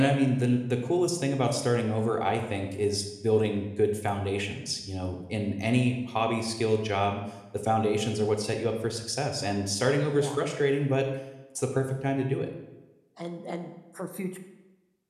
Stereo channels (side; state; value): both; identical; correlation 1.00